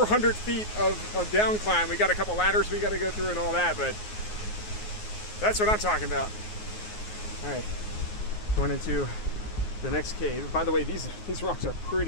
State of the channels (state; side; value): late; right; 9.5 ms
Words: hundred feet of down climb. We got a couple ladders we got to go through and all that, but That's what I'm talking about. All right, going into the next cave. By the way, these rocks are